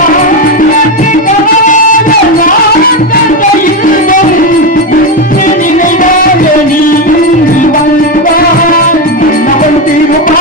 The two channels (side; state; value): both; normal; correlation 0.11